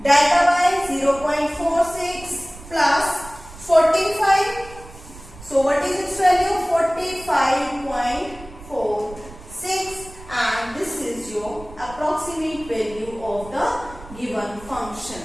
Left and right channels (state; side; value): noise; right; rumble, 18 dB below the sound